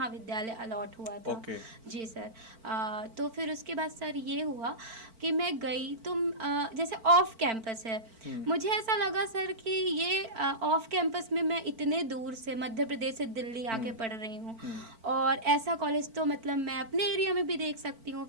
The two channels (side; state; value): left; late; 4.5 ms